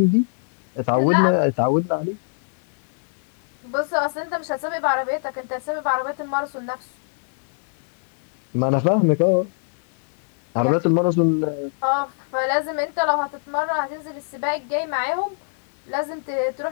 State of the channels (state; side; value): silent; right; digital silence